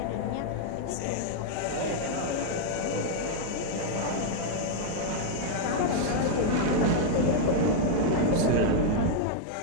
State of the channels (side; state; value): both; different; correlation -0.01